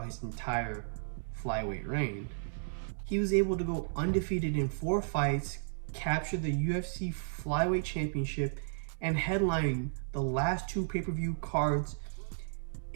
his entire flyweight reign. He was able to go undefeated in 4 fights, capture the UFC Flyweight Championship, and headline the last 2 pay-per-view cards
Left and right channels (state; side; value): silent; left; 55 dB below the other